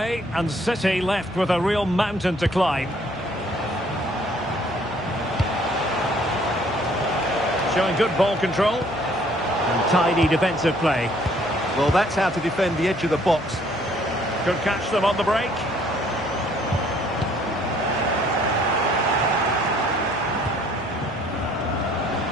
and City left with a real mountain to climb. Showing good ball control and tidy defensive play. Well, that's how to defend the edge of the box. Could catch them on the break.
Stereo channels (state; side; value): noise; left; hum, 20 dB below the sound